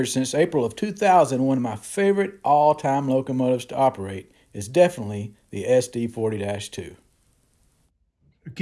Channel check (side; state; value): both; identical; correlation 1.00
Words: since April of 2000, one of my favorite all-time locomotives to operate is definitely the SD40-2.